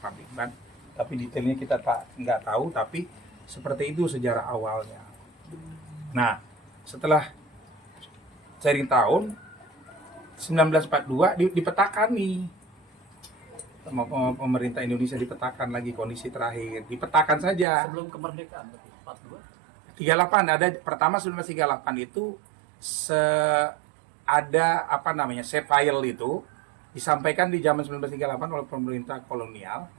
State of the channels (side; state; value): left; drops out; at 17.7 s